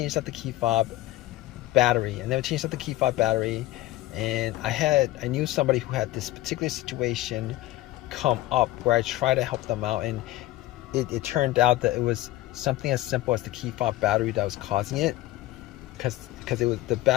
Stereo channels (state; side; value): quieter; right; 16.4 dB